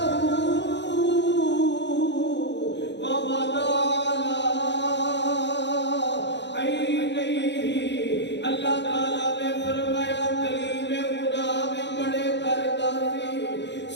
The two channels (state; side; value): late; right; 0.51 ms